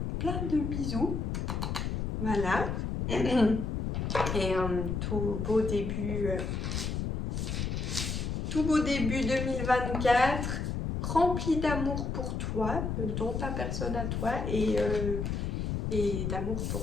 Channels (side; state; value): left; noise; rumble, 2 dB below the sound